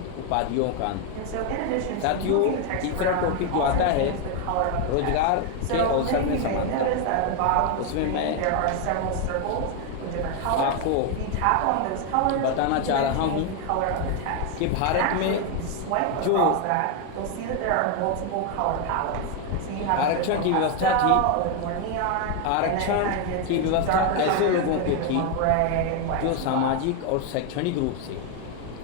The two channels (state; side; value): different; both; correlation 0.01